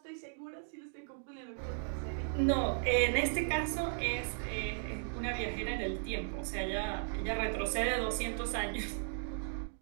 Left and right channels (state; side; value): silent; left; digital silence